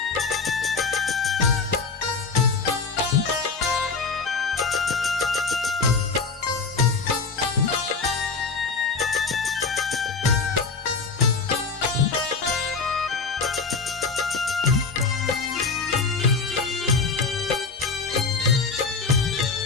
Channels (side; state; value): right; quieter; 4.7 dB